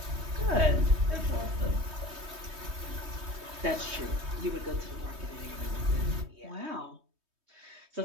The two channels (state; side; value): late; left; 3.2 ms